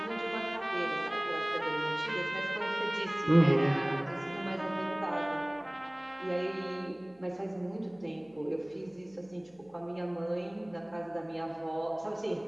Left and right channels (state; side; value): noise; left; hum, 30 dB below the sound